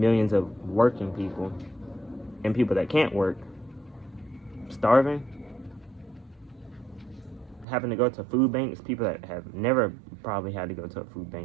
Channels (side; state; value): left; drops out; at 7.7 s